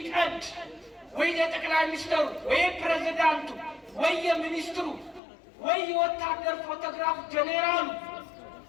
ወይ የጠቅላይ ሚኒስትሩ ወይ ፕሬዝዳንቱ ወይ የሚኒስትሩ ወይ የወታደር ፎቶግራፍ ጀኔራሉ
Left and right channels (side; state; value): right; drops out; at 5.2 s